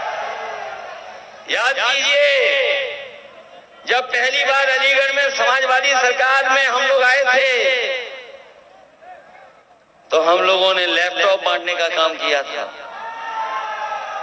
याद कीजिए, जब पहली बार अलीगढ़ में समाजवादी सरकार में हम लोग आए थे तो हम लोगों ने लैपटॉप बांटने का काम किया था।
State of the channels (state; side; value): identical; both; correlation 1.00